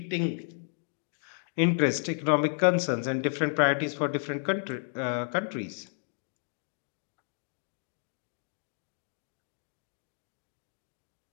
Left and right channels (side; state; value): right; silent; 56 dB below the other